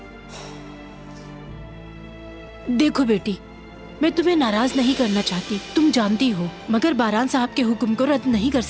देखो बेटी, मैं तुम्हें नाराज नहीं करना चाहती, तुम जानती हो, मगर बारान साहब के हुक्म को रद्द नहीं कर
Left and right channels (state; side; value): identical; both; correlation 1.00